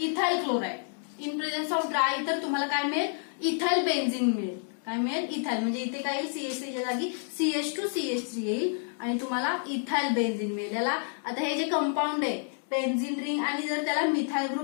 chloride. In presence of dry तर तुम्हाला काय मिळेल, इथाइल बेन्झीन मिळेल. काय मिळेल, इथाइल. म्हणजे इथे काय येईल, CH3 च्या जागी CH2CH3 येईल आणि तुम्हाला इथाइल बेन्झीन मिळेल. याला आता हे जे कंपाऊंड आहे बेन्झीन रिंग आणि जर त्याला मिथाइल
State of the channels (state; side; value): silent; right; 56 dB below the other